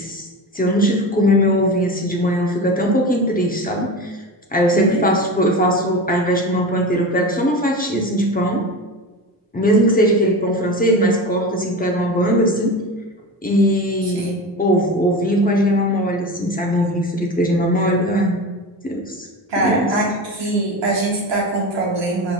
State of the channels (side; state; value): both; normal; correlation 0.26